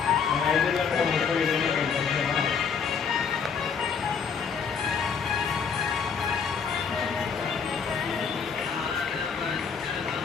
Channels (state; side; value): quieter; right; 6.2 dB